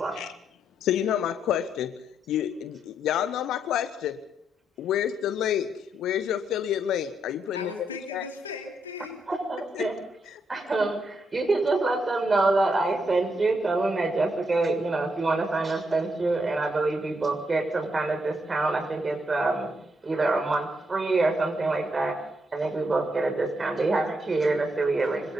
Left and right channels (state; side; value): normal; both; correlation 0.78